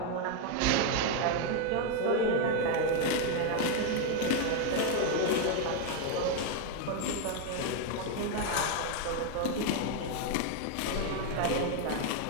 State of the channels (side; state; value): both; different; correlation 0.01